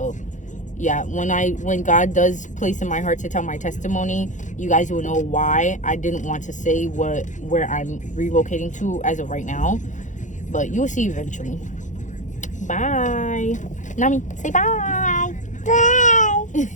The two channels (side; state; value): right; late; 0.36 ms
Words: yeah, when God does place in my heart to tell my testimony, you guys will know why I didn't want to say where I'm relocating to as of right now, but you will see eventually. Bye. Nami, say bye.